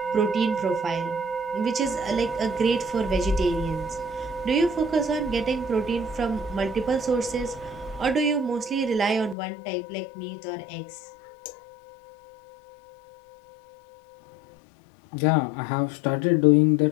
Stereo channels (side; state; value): right; drops out; at 9.3 s